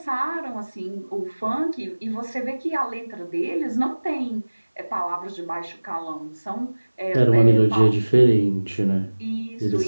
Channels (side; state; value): both; inverted; correlation -1.00